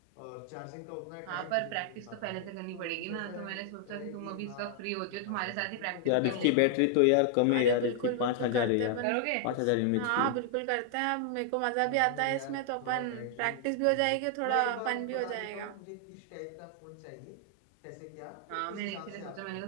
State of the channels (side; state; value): both; different; correlation 0.00